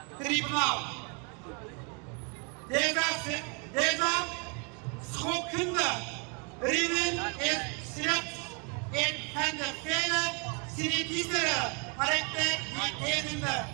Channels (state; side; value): quieter; left; 33.5 dB